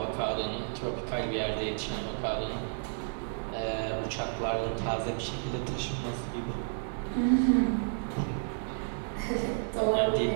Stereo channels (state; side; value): silent; left; digital silence